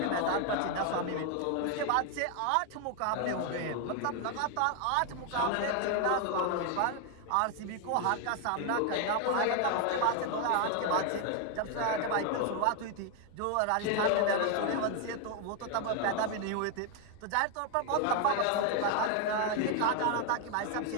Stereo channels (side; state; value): both; different; correlation 0.01